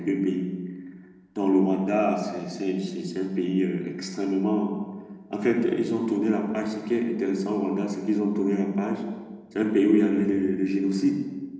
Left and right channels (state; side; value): identical; both; correlation 1.00